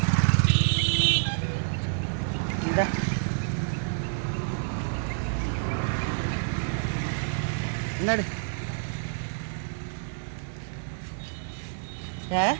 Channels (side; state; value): left; silent; digital silence